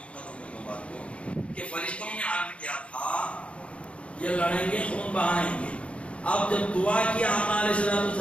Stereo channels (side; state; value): right; late; 0.062 ms